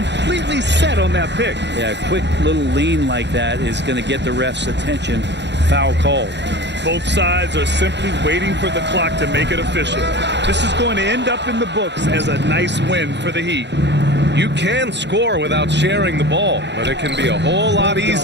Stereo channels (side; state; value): left; late; 0.51 ms